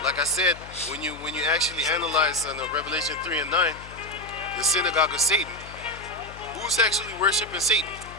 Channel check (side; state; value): left; noise; hum, 16 dB below the sound